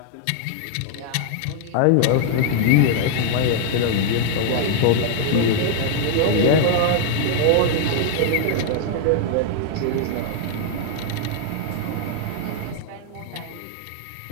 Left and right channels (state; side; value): different; both; correlation 0.00